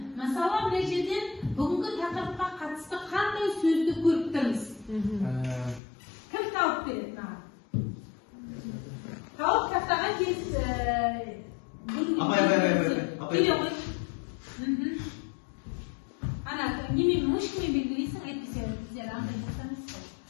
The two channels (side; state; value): right; drops out; at 5.8 s